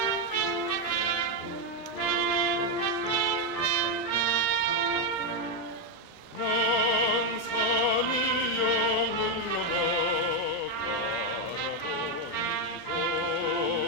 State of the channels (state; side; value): normal; both; correlation 0.04